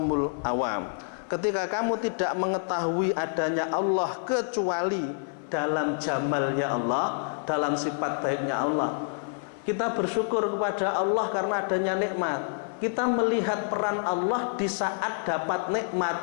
awam. Ketika kamu tidak mengetahui adanya Allah kecuali dalam jamalnya Allah, dalam sifat baiknya Allah, kita bersyukur kepada Allah karena adanya nikmat. Kita melihat peran Allah di saat dapat nikmat.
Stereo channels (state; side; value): silent; right; 60 dB below the other